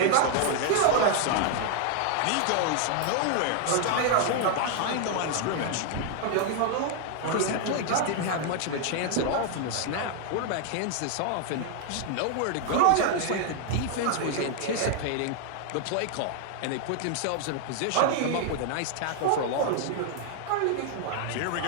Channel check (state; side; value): different; both; correlation 0.00